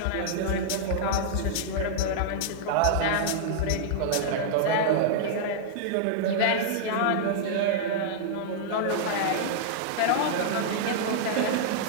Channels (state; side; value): different; both; correlation -0.01